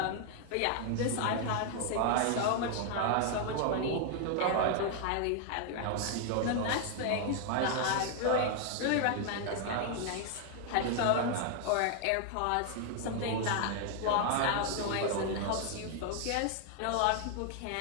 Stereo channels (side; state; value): both; different; correlation 0.00